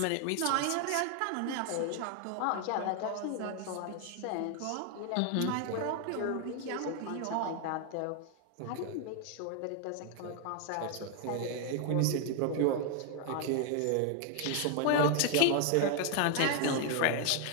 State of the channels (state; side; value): different; both; correlation 0.00